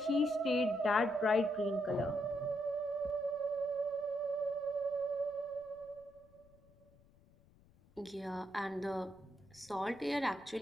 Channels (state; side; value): noise; left; rumble, 28 dB below the sound